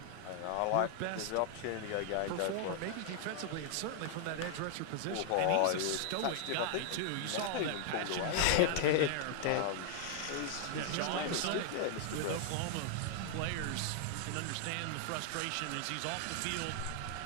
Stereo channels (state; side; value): different; both; correlation 0.00